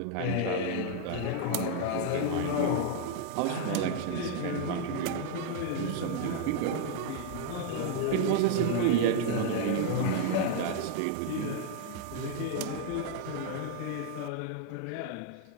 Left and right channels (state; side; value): different; both; correlation 0.00